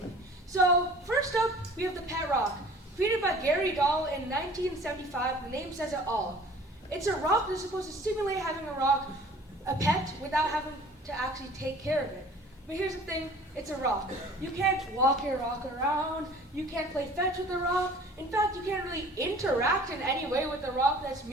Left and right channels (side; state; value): both; normal; correlation 0.48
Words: So first up, we have the pet rock. Created by Gary Dahl in 1975, the name says it all. It's a rock that's supposed to simulate having a pet without having to actually take care of it. But here's the thing, it's a rock. You can't walk your rock around, you can't play fetch with the rock. In fact, you can't really interact in any way with the rock that's